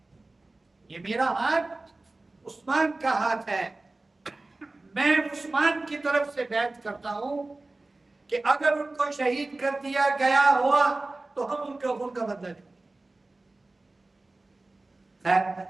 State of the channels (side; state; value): left; quieter; 3.0 dB